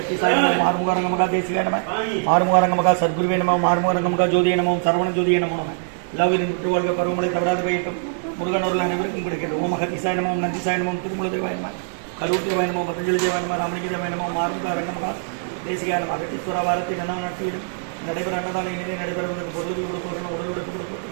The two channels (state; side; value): silent; left; 63 dB below the other